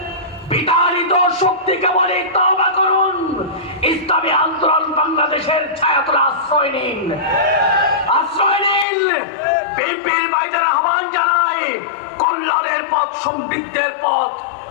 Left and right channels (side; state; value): right; drops out; at 8.8 s